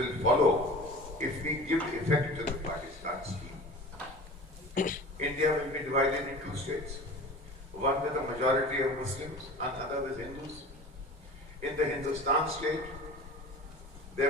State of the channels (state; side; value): normal; both; correlation 0.38